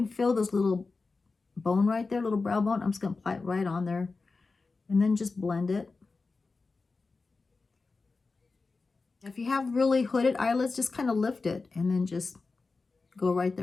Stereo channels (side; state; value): right; quieter; 4.0 dB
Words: feel this little bone right there, little brow bone. I'm just going to apply it right on there and then just blend it. If you have really hooded eyelids, just kind of lift it and then just go right